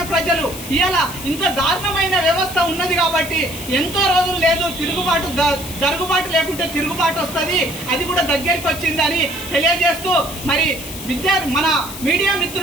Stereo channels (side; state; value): left; noise; hiss, 11 dB below the sound